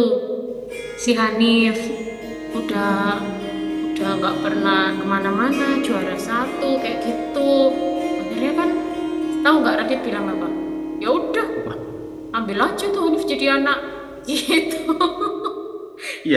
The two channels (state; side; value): identical; both; correlation 1.00